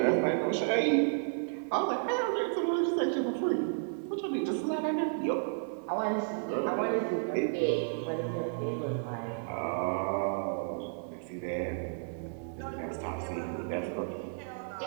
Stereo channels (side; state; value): left; silent; 55 dB below the other